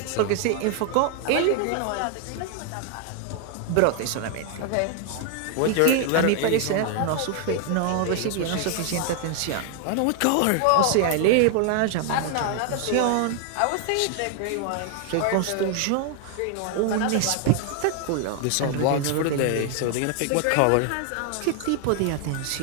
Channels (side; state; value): both; different; correlation 0.00